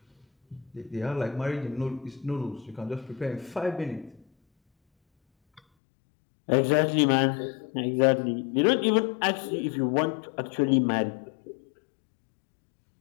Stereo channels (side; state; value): right; drops out; at 5.6 s